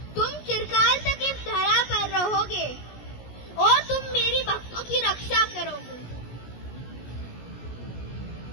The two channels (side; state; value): right; late; 17 ms